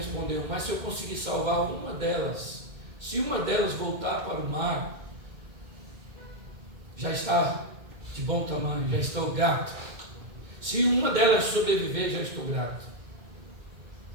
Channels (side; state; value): left; late; 2.1 ms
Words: mas se eu conseguir salvar uma delas, se uma delas voltar para o mar, já está de bom tamanho, já estou grato. Se uma delas sobreviver, já estou grato.